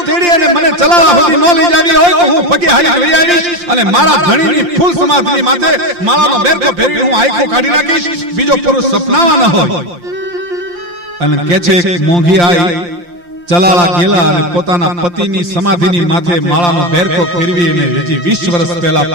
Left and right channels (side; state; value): left; late; 5.7 ms